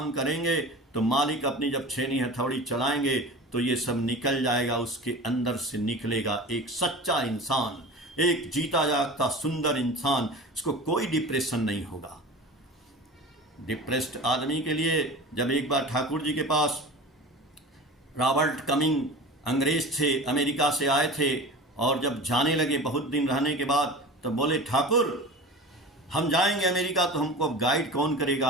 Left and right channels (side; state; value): both; normal; correlation 0.34